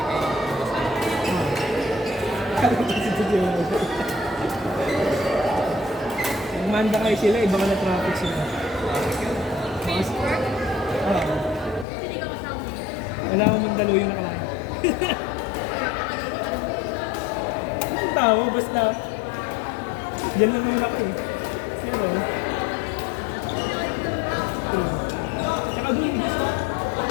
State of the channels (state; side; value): drops out; right; at 11.9 s